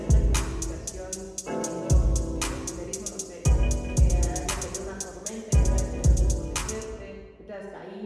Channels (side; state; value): both; identical; correlation 1.00